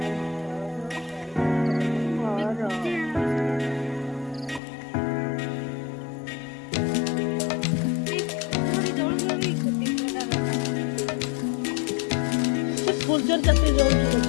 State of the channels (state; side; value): drops out; right; at 4.6 s